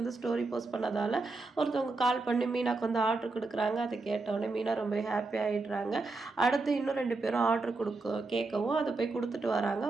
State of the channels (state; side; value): quieter; left; 3.6 dB